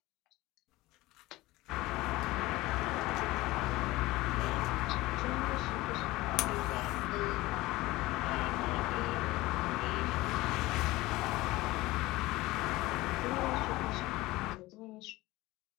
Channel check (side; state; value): right; quieter; 19.2 dB